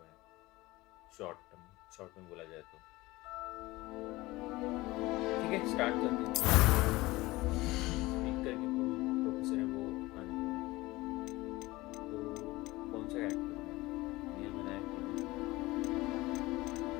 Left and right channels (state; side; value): quieter; right; 20.0 dB